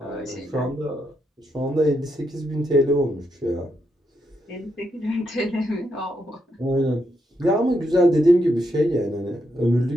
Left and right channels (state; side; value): normal; both; correlation 0.80